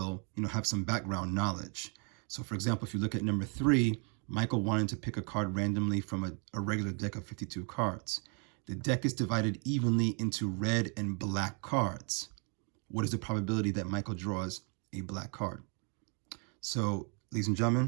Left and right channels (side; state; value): left; quieter; 36.6 dB